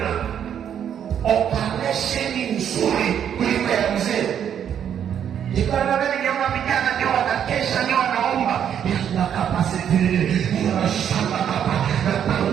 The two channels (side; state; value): left; quieter; 9.0 dB